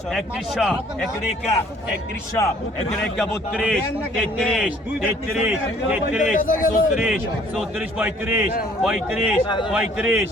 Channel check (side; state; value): both; normal; correlation 0.58